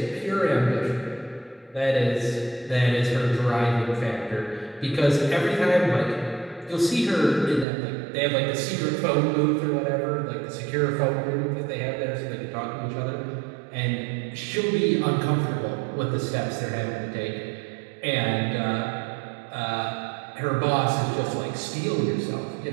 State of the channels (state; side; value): drops out; left; at 7.7 s